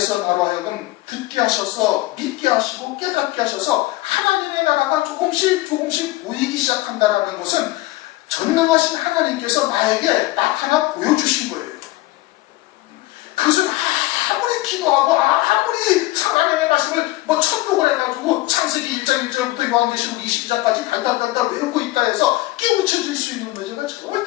나로 하여금 듣게 하셔서 믿게 하시고 깨닫게 하셔서 하나님의 나라가 조금씩 보이기 시작한다는 것은 전능하신 하나님께서 나에게 나타나 보여주신 거예요. 그것은 아무리 기도하고 아무리 하나님의 말씀을 천독을 해가지고 창세기 1장 1절부터 요한계시록 20장까지 달달달달 외우고 있다 해서 깨우쳐질 수 있는 문제가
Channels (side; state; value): right; quieter; 18.7 dB